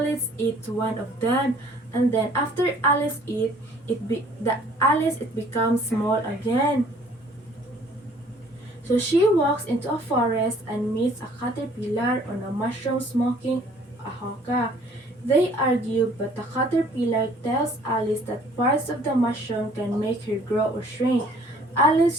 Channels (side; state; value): both; normal; correlation 0.56